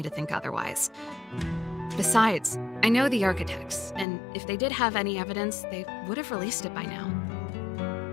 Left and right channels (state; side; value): drops out; right; at 4.0 s